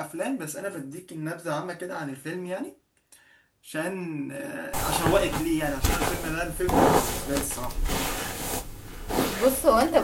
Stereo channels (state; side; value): identical; both; correlation 1.00